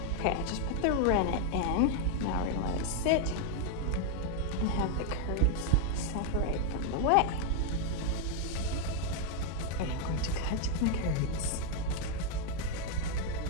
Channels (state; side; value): different; both; correlation 0.00